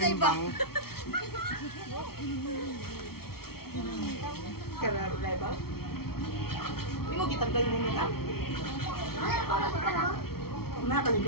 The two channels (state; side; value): late; right; 0.94 ms